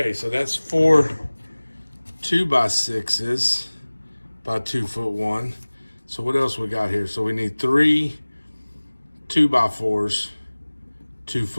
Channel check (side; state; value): both; inverted; correlation -1.00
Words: so that's 4 2x6s by 2-foot 1. So what else we got here? So we need 3 2x4s,